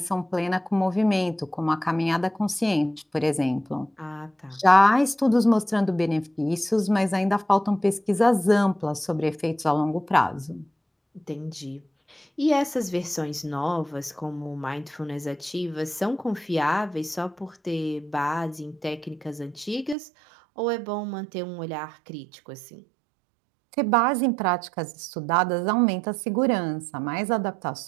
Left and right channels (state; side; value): drops out; left; at 20.0 s